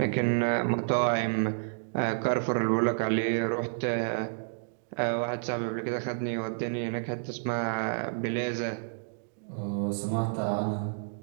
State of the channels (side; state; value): left; silent; digital silence